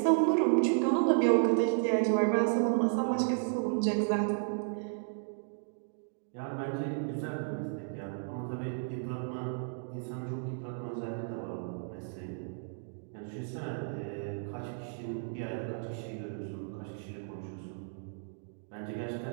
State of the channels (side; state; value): left; silent; digital silence